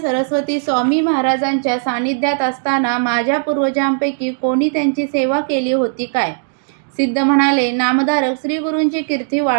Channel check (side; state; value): left; silent; digital silence